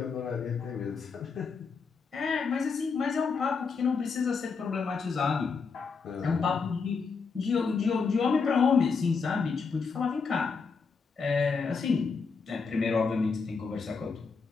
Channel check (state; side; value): quieter; right; 5.2 dB